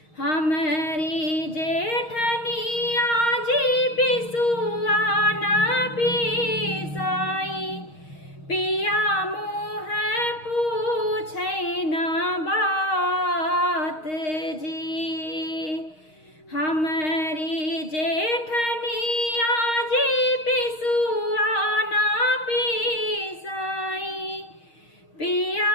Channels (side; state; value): right; late; 6.4 ms